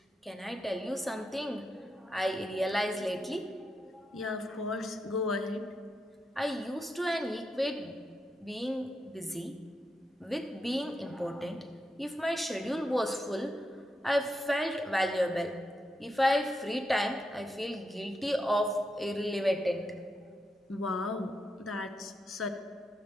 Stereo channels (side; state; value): both; normal; correlation 0.84